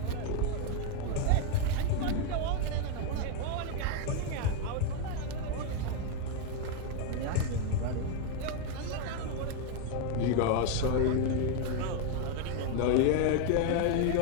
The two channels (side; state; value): both; different; correlation 0.01